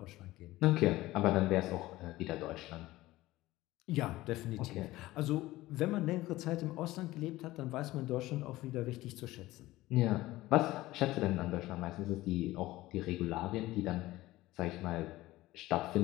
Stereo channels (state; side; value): quieter; right; 17.6 dB